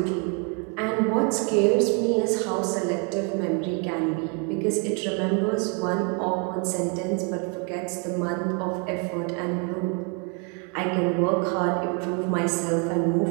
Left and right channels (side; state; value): left; quieter; 36.3 dB